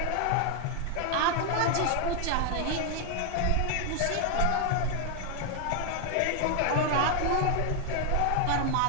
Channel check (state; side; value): different; both; correlation 0.01